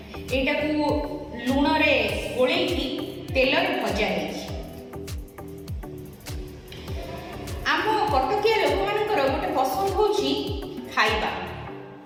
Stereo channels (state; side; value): identical; both; correlation 1.00